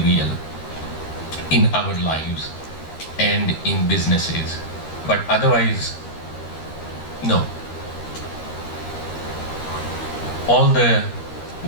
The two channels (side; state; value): right; late; 13 ms